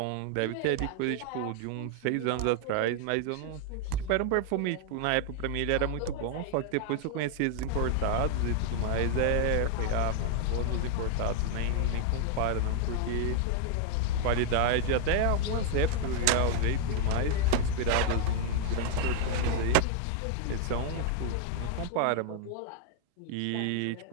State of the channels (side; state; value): both; different; correlation 0.00